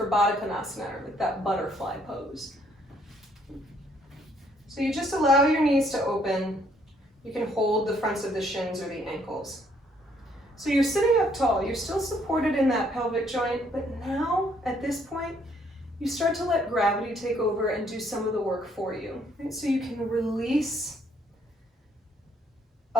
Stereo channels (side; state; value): both; normal; correlation 0.67